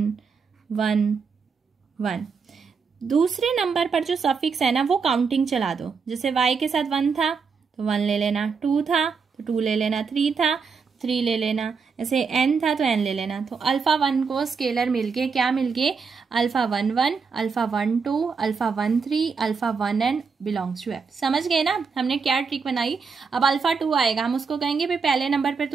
1 1। दूसरे नंबर पर जो सफिक्स है ना वो काउंटिंग चला दो। जैसे y के साथ 1 था तो 1 ले लेना, 2 था तो 2 ले लेना, 3 था 3 ले लेना, ऐसे n था तो n ले लेना। तो अल्फा 1 को स्केलर मिल गए, क्या मिल गए? Alpha 1 1, alpha 1 2, alpha 1 3, alpha 1 n belongs to f। समझ गए ना हमने क्या ट्रिक बनाई? अब अल्फा 2 आएगा, हम उसको कहेंगे भाई पहले नंबर पर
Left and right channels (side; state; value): left; quieter; 5.4 dB